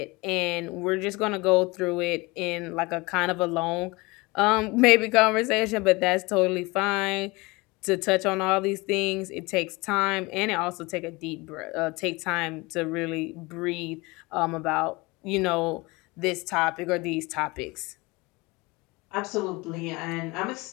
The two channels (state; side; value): quieter; right; 24.1 dB